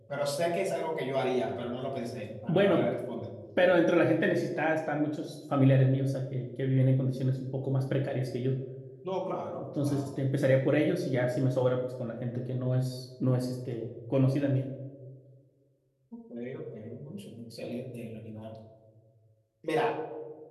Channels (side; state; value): both; identical; correlation 1.00